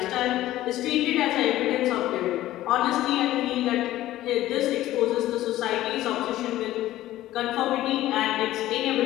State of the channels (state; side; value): quieter; right; 14.8 dB